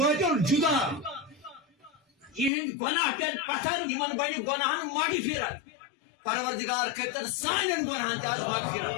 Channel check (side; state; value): right; drops out; at 2.5 s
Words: جدا یہند گناہ پٮ۪ن پتھر یمن بنہِ گۄناہن مغفرت پروردگار کرتن سانٮ۪ن گۄناہن تہِ آز